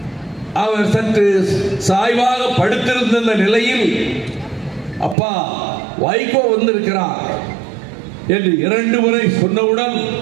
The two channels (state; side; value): drops out; left; at 5.2 s